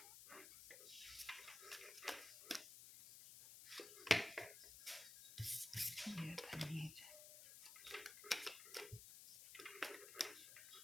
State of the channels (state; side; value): noise; left; hiss, 12 dB below the sound